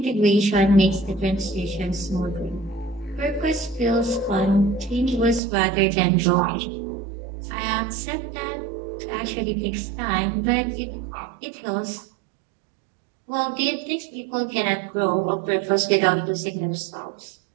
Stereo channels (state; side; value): drops out; left; at 5.4 s